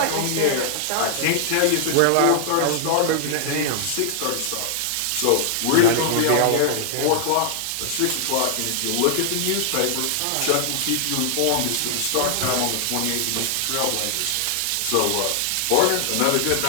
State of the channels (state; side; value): different; both; correlation 0.00